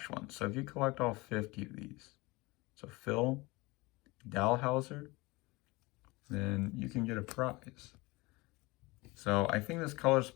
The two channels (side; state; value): right; quieter; 23.3 dB